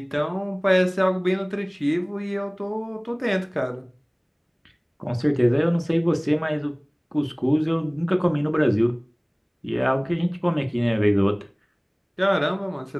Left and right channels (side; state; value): both; identical; correlation 1.00